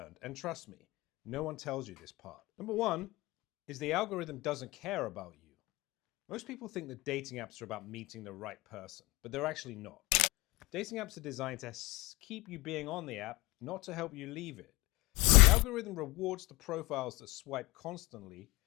And trust me, no one tells you this part. Number one is the algorithm doesn't care about you. Most people think that dating apps are about meeting the right person, but they're actually not. Dating apps are designed to keep you being on the app, not to help you leave it. The algorithm rewards the profiles that swipe constantly,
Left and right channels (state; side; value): quieter; right; 22.1 dB